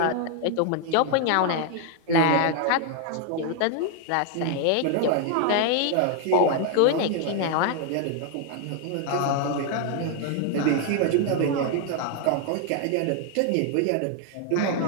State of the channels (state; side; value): different; both; correlation 0.00